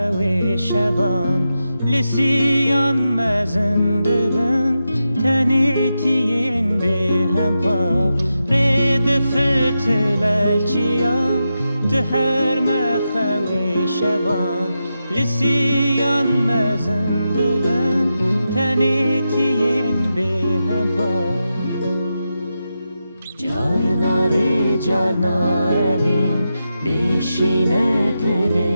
شوان لسیان مزنده بن تنیتین به هم با رید فتل الچیان ده هر مخوی شوان لسیان مزنده بن تنیتین به هم با جارناری جارناریم بیشینه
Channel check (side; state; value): both; inverted; correlation -0.88